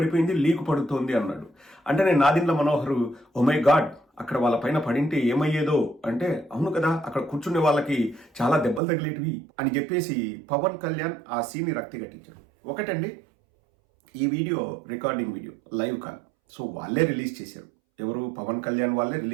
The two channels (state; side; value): drops out; left; at 8.8 s